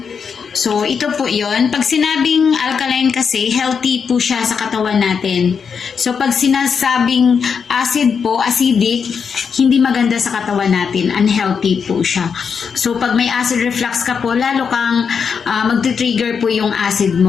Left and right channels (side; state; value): right; quieter; 6.3 dB